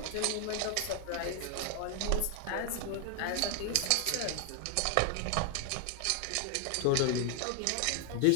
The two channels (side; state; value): both; different; correlation 0.00